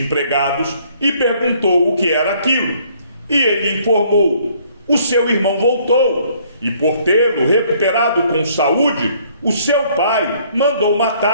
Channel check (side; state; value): both; inverted; correlation -0.62